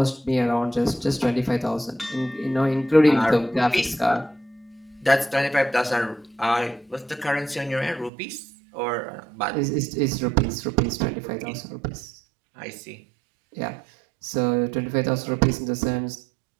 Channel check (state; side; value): drops out; left; at 8.1 s